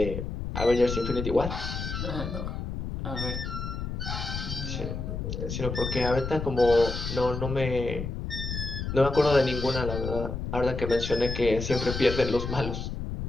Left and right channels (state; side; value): noise; left; rumble, 5 dB below the sound